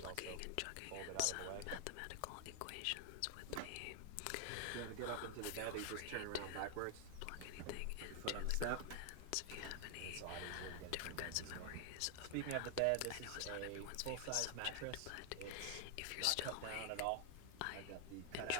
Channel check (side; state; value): both; different; correlation 0.00